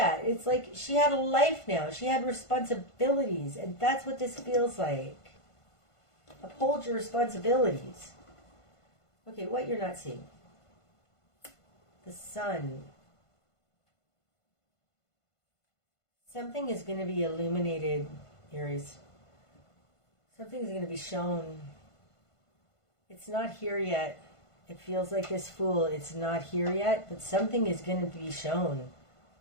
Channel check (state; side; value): late; right; 1.5 ms